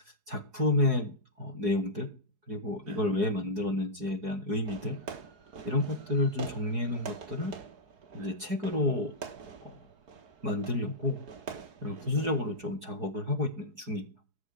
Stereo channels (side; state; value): left; late; 4.8 ms